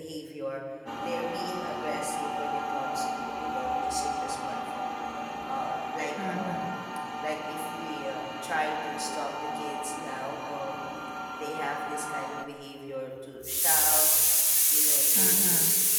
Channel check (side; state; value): both; identical; correlation 1.00